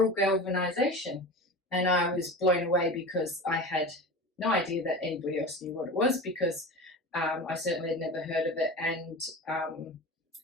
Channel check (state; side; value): normal; both; correlation 0.31